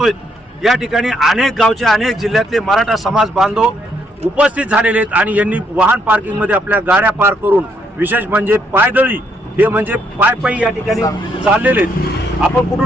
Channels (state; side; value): normal; both; correlation 0.73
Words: या ठिकाणी अनेक गावचे, अनेक जिल्ह्यातले मराठा समाज बांधव उपस्थित झालेले आहेत आणि यांनी वाहन पार्किंग मध्ये आपल्या गाड्या पार्क करून, विशेष म्हणजे पायदळी, हे म्हणजे पायी या ठिकाणी चाललेले आहेत. आपण